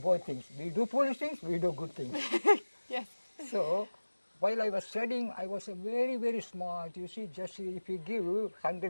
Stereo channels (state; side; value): inverted; both; correlation -1.00